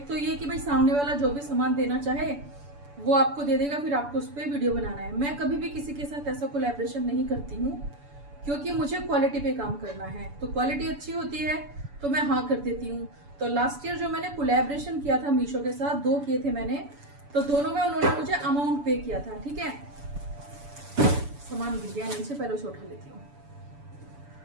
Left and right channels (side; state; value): left; late; 7.0 ms